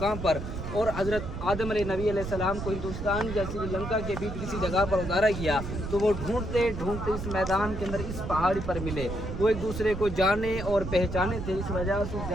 पर और हजरत आदम नबी अलैहिस्सलाम को हिंदुस्तान या श्रीलंका के बीच किसी जगह पर उतारा गया, तो वो ढूंढते ढूंढते इस मैदान के अंदर इस पहाड़ी पर मिले। वो एक दूसरे को जाने और पहचाने थे। इस वजह से उस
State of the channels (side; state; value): right; noise; rumble, 7 dB below the sound